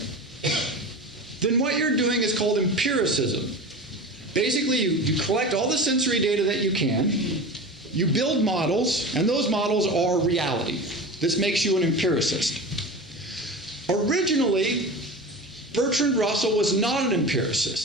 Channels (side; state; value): both; normal; correlation 0.30